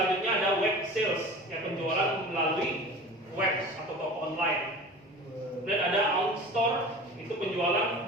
ada web sales, ya, penjualan melalui web atau toko online. Dan ada own store, itu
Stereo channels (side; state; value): both; normal; correlation 0.38